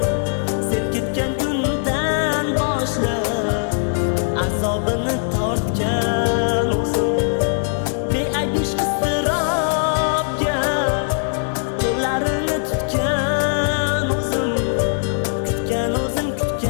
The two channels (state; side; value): silent; right; 63 dB below the other